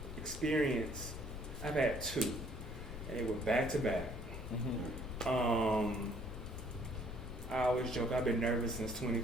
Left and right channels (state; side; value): noise; left; rumble, 8 dB below the sound